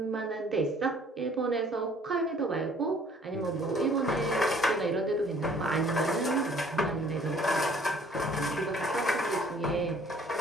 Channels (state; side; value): normal; both; correlation 0.57